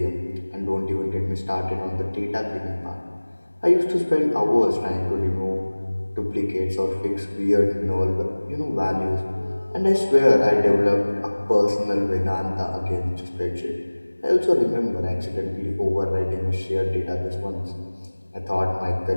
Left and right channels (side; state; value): both; inverted; correlation -1.00